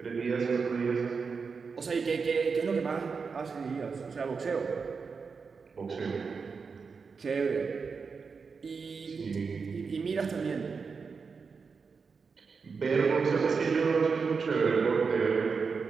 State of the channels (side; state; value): left; quieter; 5.2 dB